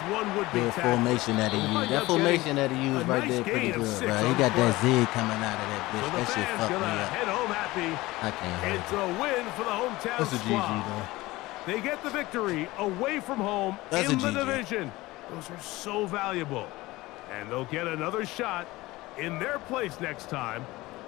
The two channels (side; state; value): right; quieter; 19.5 dB